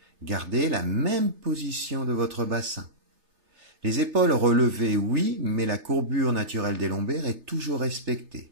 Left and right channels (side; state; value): left; late; 3.3 ms